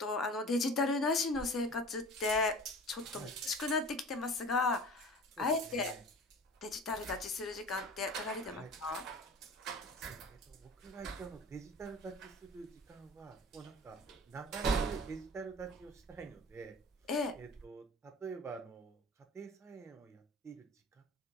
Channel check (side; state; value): both; normal; correlation 0.39